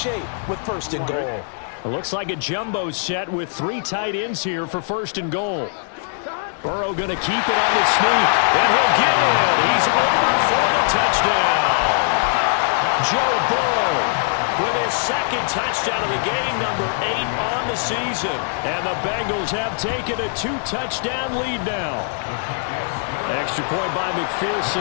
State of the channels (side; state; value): right; silent; digital silence